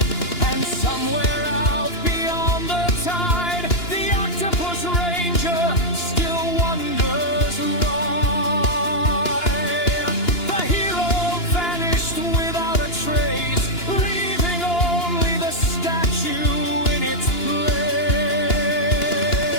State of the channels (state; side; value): late; right; 2.9 ms